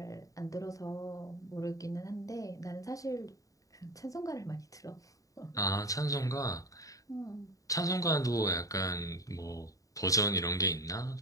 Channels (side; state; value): right; late; 0.16 ms